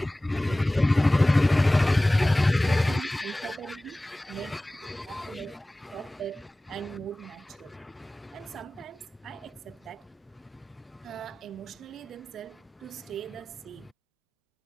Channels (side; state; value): both; normal; correlation 0.98